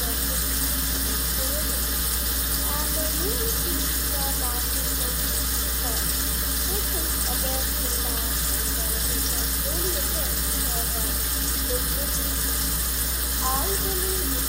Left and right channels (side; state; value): both; identical; correlation 1.00